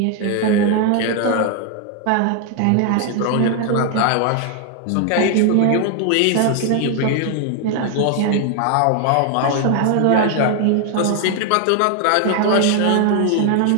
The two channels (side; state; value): both; different; correlation 0.00